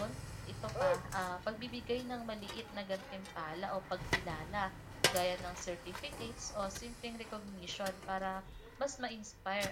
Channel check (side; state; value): both; identical; correlation 1.00